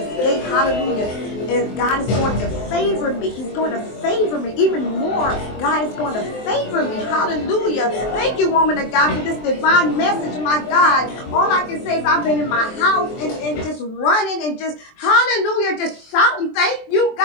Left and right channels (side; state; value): right; late; 23 ms